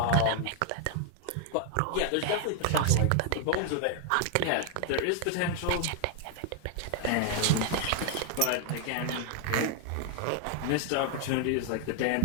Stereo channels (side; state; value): both; different; correlation 0.00